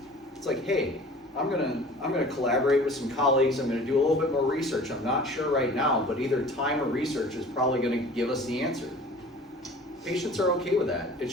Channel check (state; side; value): normal; both; correlation 0.45